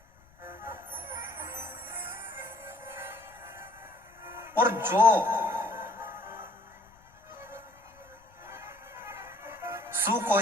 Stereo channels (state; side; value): noise; left; rumble, 28 dB below the sound